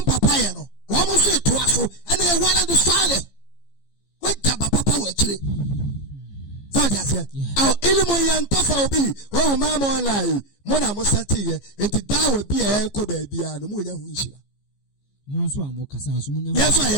papa ye no wo mo so to aso ene e wala do sale waja papa wo chire so just here aw ilmu yantafa obi wo ma mo online mo na mo sati ye enti dawo bi e ko ba bia no mo nya hu nshira mo so amo kasa so mo nya yes so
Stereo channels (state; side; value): late; right; 15 ms